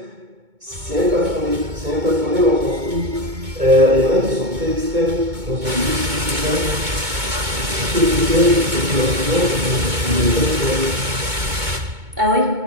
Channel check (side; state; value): left; late; 2.2 ms